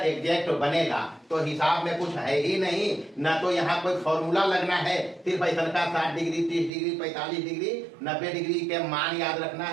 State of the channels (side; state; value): left; drops out; at 6.7 s